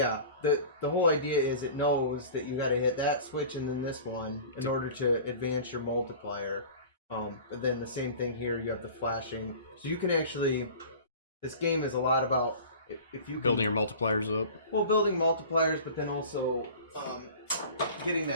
the whole idea is it knows that you got to hit that switch and then this one in order to advance your multiplier. But then the same thing here, you have the flashing. So you can actually, this game is a lot about if you building your multipliers up. Well, building multipliers, but then also getting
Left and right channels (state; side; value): inverted; both; correlation -0.40